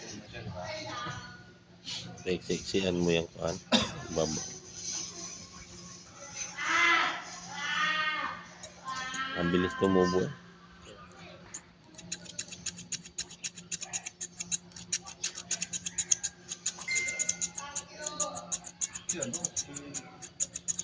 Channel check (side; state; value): both; identical; correlation 1.00